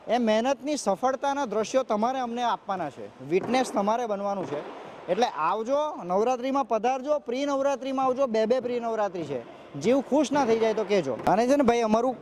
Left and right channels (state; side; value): identical; both; correlation 1.00